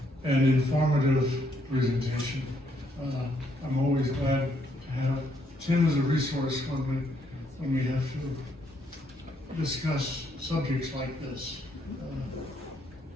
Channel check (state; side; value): normal; both; correlation 0.73